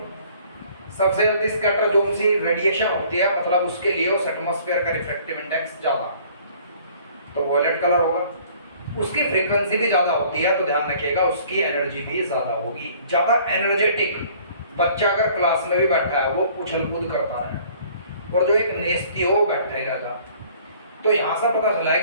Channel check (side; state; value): both; inverted; correlation -0.55